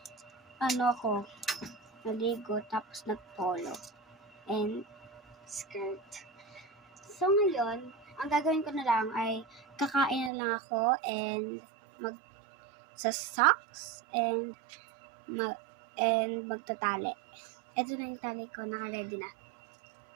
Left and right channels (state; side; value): drops out; left; at 10.3 s